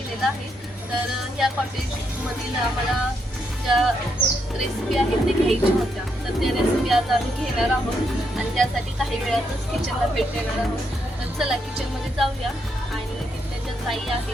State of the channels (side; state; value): both; normal; correlation 0.79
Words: आहे. तर ह्या कॉटेजमधील आम्हाला ज्या रेसिपी आहेत ते घ्यायच्या होत्या, तर त्या रेसिपी आज आम्ही घेणार आहोत आणि त्यासाठी काही वेळातच किचनला भेट देणार आहोत. तर चला किचनमध्ये जाऊया आणि तिथल्या ज्या ताई